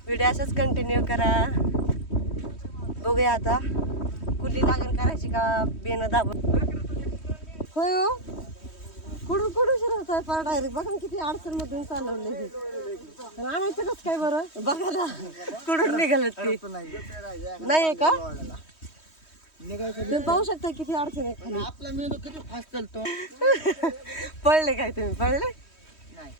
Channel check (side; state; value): right; late; 3.1 ms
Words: व्हिडिओ असाच कंटिन्यू करा. बघूया आता कुठली लागण करायची का बेनं दाबून. होय हो, कुठून कुठून शिरत आहे पार डायरेक्ट. बघा किती अडचण मधून चालवले. आणायचं कसं काय बरं? बघा ना कुठून निघाल ते. नाही का? तुम्ही पाहू शकता किती अडचण आहे खाली. आपला मेंदू किती फास्ट चालतो. पळले काय तुम्ही? पळले